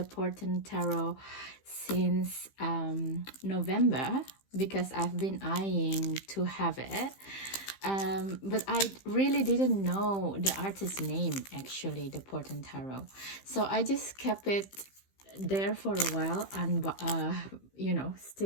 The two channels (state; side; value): late; right; 15 ms